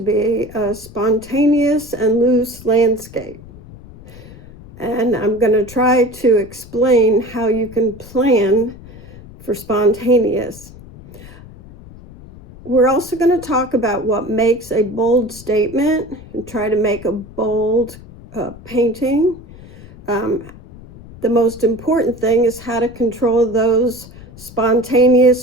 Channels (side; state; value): left; noise; rumble, 19 dB below the sound